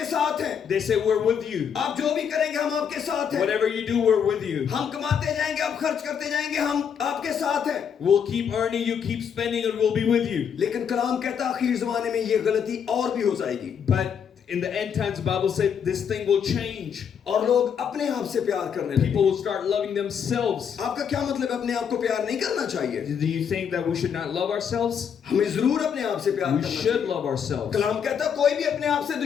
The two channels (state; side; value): quieter; right; 7.6 dB